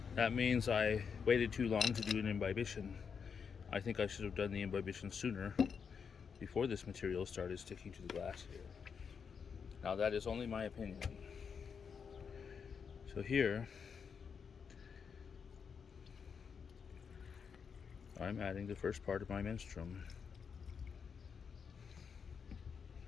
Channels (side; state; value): right; quieter; 6.3 dB